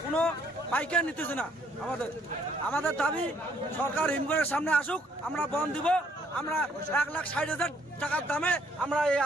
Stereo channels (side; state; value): both; normal; correlation 0.65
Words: কোনো পাইকার নিতেছে না। আমাদের দাবি, সরকার হিমঘরের সামনে আসুক, আমরা বন্ধ দিব। আমরা ১,৬০,০০০ টাকার দামে আমরা এই